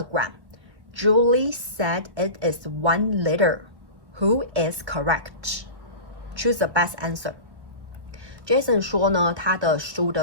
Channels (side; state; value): left; late; 1.1 ms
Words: Julie said it is 1 liter. Who is correct? Choose the best answer. Jason 说呢，他的书